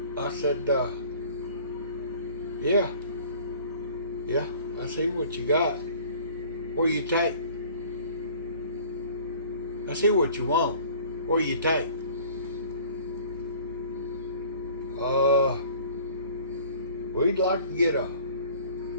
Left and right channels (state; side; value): inverted; both; correlation -0.49